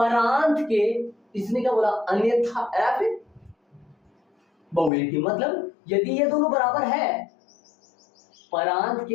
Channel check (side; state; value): right; drops out; at 4.9 s